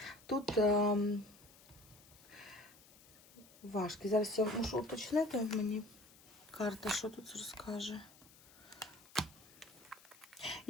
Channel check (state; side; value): noise; left; hiss, 23 dB below the sound